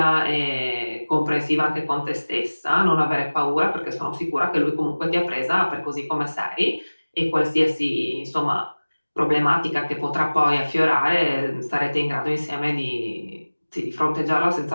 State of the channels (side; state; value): both; inverted; correlation -1.00